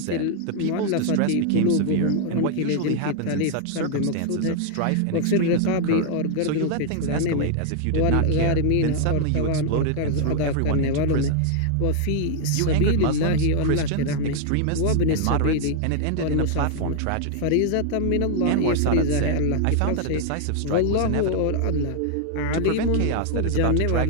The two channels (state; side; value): different; both; correlation 0.00